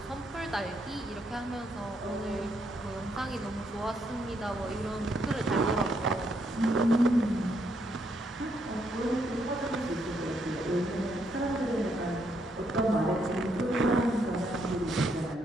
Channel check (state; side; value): normal; both; correlation 0.75